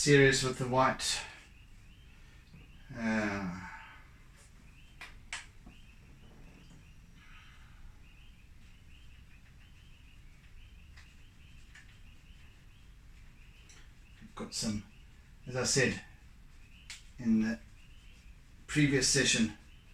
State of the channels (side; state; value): both; identical; correlation 1.00